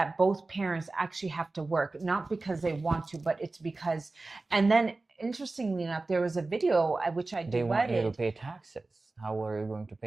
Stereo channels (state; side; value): quieter; left; 3.3 dB